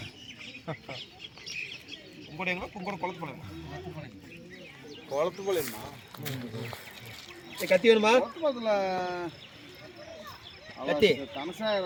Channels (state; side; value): identical; both; correlation 1.00